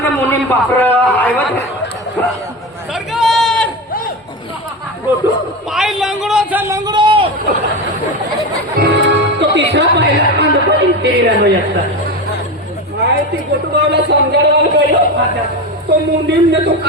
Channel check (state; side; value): normal; both; correlation 0.21